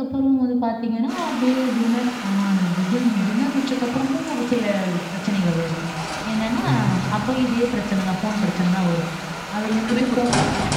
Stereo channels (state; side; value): identical; both; correlation 1.00